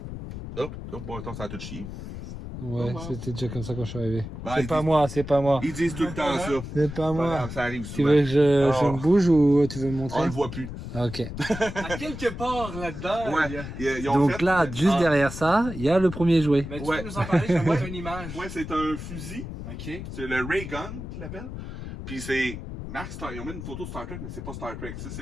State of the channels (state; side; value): noise; left; rumble, 9 dB below the sound